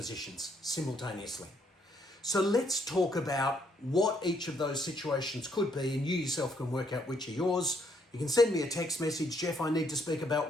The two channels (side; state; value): both; normal; correlation 0.71